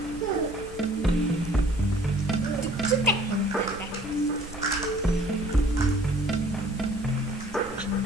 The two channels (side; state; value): both; normal; correlation 0.54